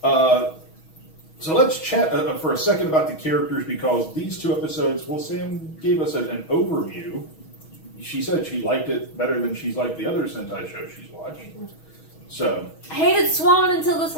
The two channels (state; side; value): late; right; 6.3 ms